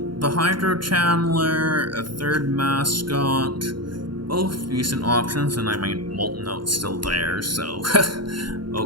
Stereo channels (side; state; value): left; late; 0.72 ms